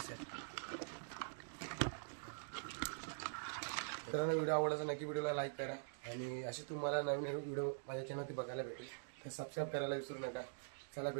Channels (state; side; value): silent; left; digital silence